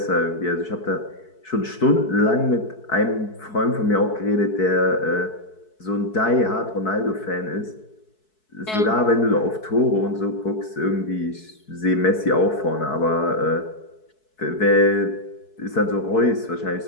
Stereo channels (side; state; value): right; late; 4.6 ms